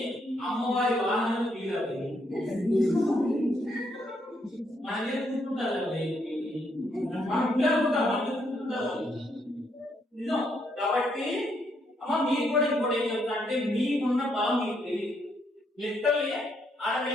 అమ్మవారి వాహనాన్ని తీరాలి మనమే కూర్చుంటారు మనం పిల్లలుకుంటారు నిజం. కాబట్టి అమ్మ మీరు కూడా ఇంకోటి ఏం చెప్తా అంటే మీకున్న బలం మీకు తెలియదు. లిటరల్లీ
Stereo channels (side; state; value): both; normal; correlation 0.75